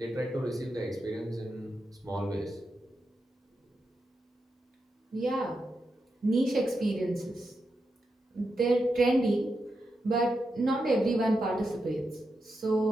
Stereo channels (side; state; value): both; normal; correlation 0.87